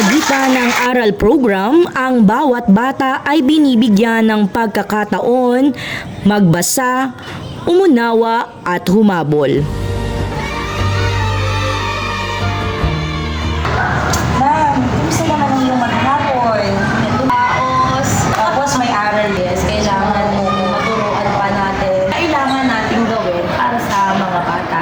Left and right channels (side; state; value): both; identical; correlation 1.00